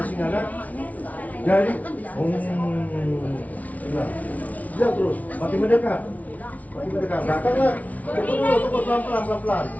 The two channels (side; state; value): right; late; 0.071 ms